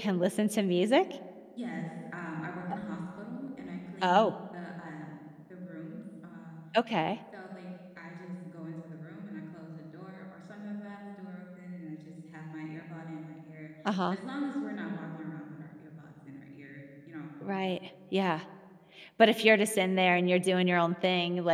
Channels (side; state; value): both; identical; correlation 1.00